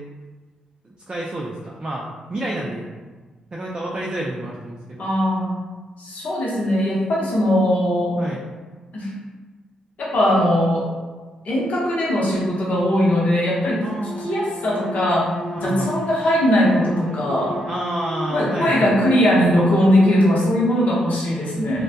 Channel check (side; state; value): both; normal; correlation 0.79